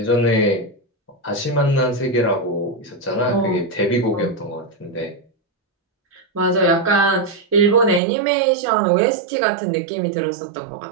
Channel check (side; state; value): left; drops out; at 8.0 s